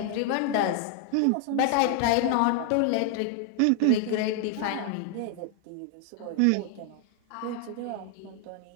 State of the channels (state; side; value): different; both; correlation 0.00